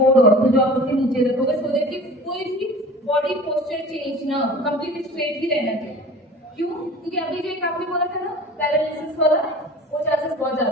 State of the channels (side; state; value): both; normal; correlation 0.41